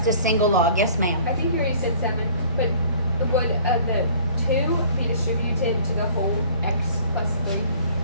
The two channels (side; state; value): both; inverted; correlation -0.51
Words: a single log. Yes, ma'am. I think you already said 7, but would the 2 be distributed to the whole x plus 3?